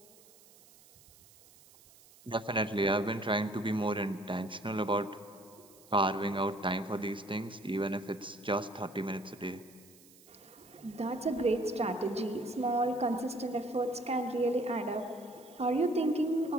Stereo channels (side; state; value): right; noise; hiss, 24 dB below the sound